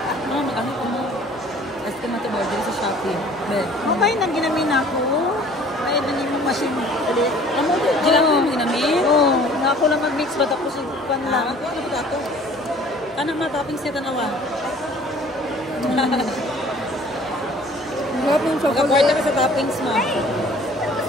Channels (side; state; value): left; noise; hum, 30 dB below the sound